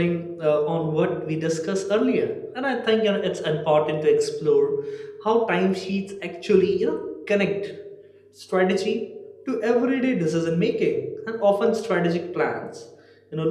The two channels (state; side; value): identical; both; correlation 1.00